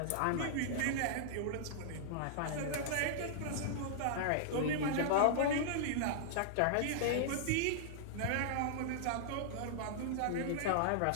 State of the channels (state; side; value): different; both; correlation -0.01